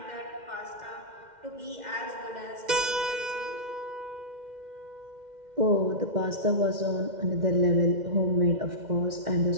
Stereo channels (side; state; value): left; late; 2.1 ms